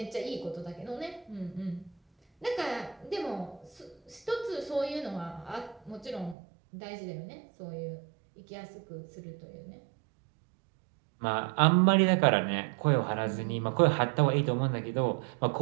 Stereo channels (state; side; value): drops out; left; at 6.4 s